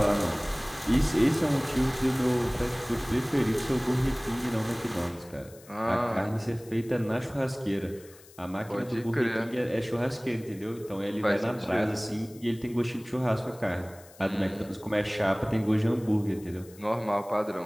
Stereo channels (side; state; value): left; noise; hiss, 23 dB below the sound